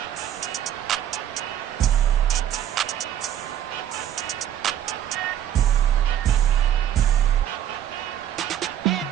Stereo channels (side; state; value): left; quieter; 10.9 dB